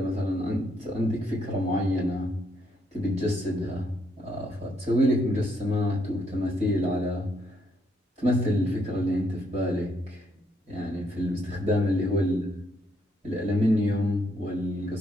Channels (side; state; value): both; normal; correlation 0.73